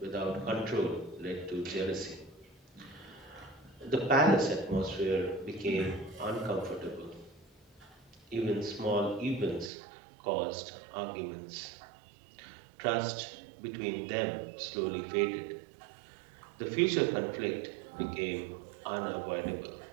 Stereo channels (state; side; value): drops out; left; at 9.7 s